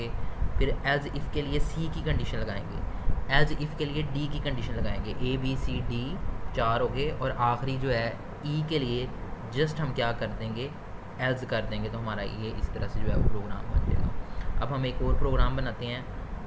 फिर एज इफ़ के लिए सी की कंडीशन लगाएंगे, एज इफ़ के लिए डी की कंडीशन लगाएंगे। ए बी सी डी 4 हो गए, और आखिरी जो है ई के लिए जस्ट हम क्या कर देंगे? एल्स कर देंगे, तो हमारा ये इस तरह से जो है वो प्रोग्राम बन जाएगा। अब हम एक और प्रोग्राम बनाते हैं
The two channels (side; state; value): both; identical; correlation 1.00